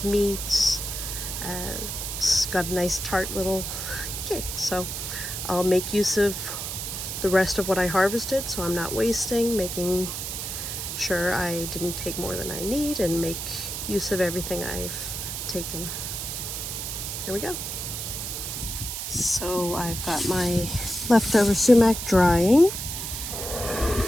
meats. It's got a nice tart little kick, so I'll make use of the rest of what I harvested, so I'm not wasting, making sure I didn't take more than I need, and make use of everything I've taken. Here we go. So I've got my leftover sumac drying.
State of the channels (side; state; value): right; noise; hiss, 5 dB below the sound